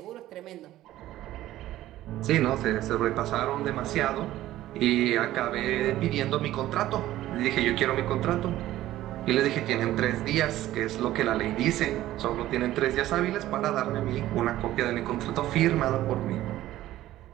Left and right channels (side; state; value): left; quieter; 14.6 dB